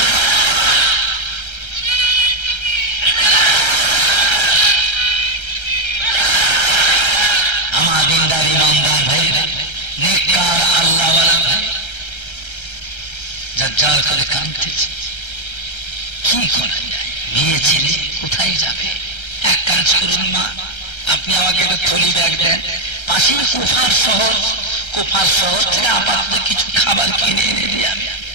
আমার দিনদার ইমানদার ভাইরা, নেককার আল্লাহওয়ালা ভাই, জাজ্জাল করে কাঁদতেছে। কি করা যায়? মেয়ে ছেলে কোথায় যাবে? এক কাজ করুন মা, আপনি আমাকে একটা থলি ব্যাগ দেন। পাশেই কুফার শহর, কুফার শহর থেকে আপাতত কিছু খাবার কিনে এনে দিই আমি।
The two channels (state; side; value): late; right; 1.3 ms